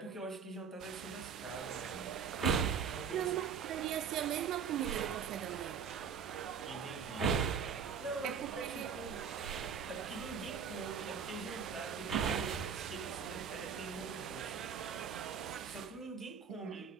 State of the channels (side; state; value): left; quieter; 6.8 dB